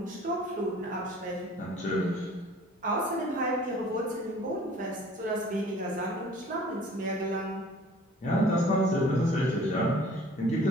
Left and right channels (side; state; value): both; normal; correlation 0.50